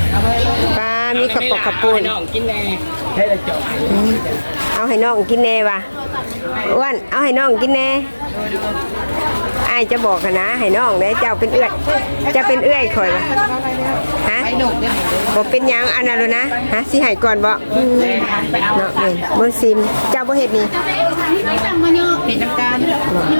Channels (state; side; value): inverted; both; correlation -1.00